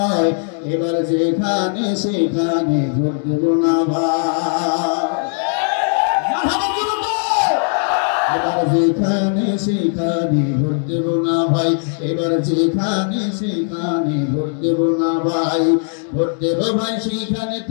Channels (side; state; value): right; silent; 59 dB below the other